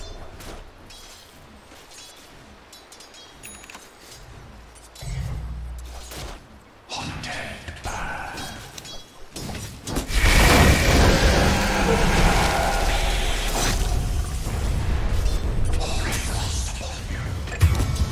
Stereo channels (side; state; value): both; identical; correlation 1.00